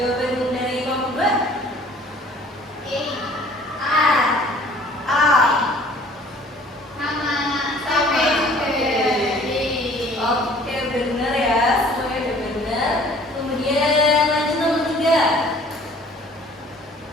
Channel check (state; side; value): normal; both; correlation 0.52